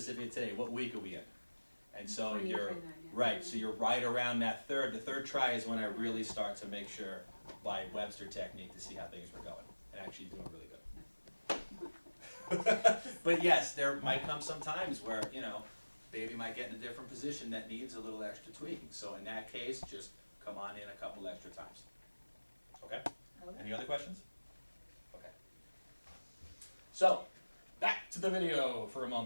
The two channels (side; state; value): both; inverted; correlation -1.00